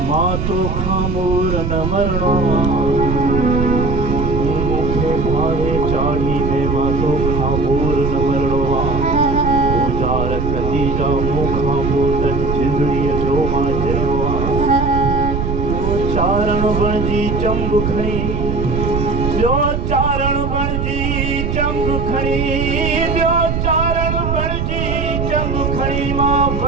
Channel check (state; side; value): noise; right; rumble, 1 dB below the sound